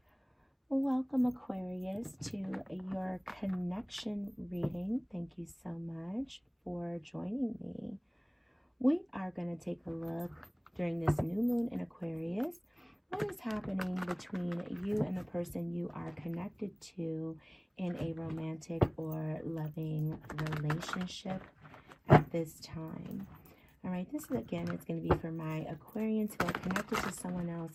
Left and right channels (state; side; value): identical; both; correlation 1.00